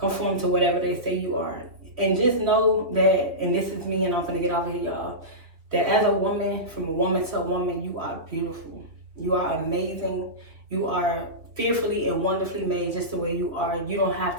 to whatever they say you are. And just know that, and this is me, and I'm going to get off of here, y'all, that as a woman, from a woman to a woman, you are beautiful. You are amazing. You are fearfully and wonderfully made just the way you are. You don't have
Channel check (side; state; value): left; late; 3.3 ms